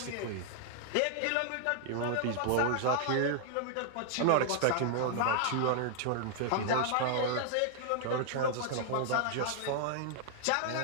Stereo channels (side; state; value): both; different; correlation 0.00